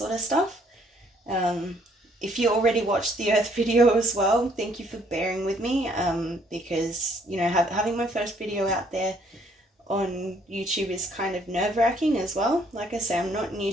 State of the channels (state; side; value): normal; both; correlation 0.65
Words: of stuff. If you already watched the Earth video as well, thank you for bearing with me, because, having my first video out there on YouTube is kind of nerve-wracking as well. Like I say, I'm not new